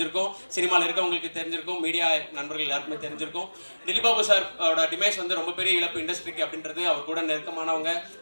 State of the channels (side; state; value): both; inverted; correlation -1.00